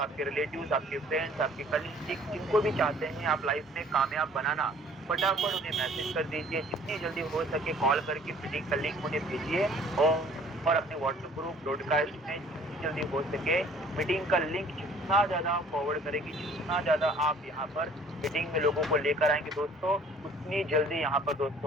रिलेटिव्स, आपके फ्रेंड्स, आपके कलीग जिनको भी चाहते हैं आप लाइफ में कामयाब बनाना, फटाफट उन्हें मैसेज कर दीजिए। जितनी जल्दी हो सके कॉल करके मीटिंग का लिंक उन्हें भेजिए और अपने व्हाट्सएप ग्रुप ब्रॉडकास्ट में जितनी जल्दी हो सके मीटिंग का लिंक जितना ज़्यादा फॉरवर्ड करेंगे, जितना ज़्यादा आप यहाँ पर मीटिंग में लोगों को लेकर आएँगे दोस्तों, उतनी जल्दी यहाँ पर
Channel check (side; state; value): both; normal; correlation 0.54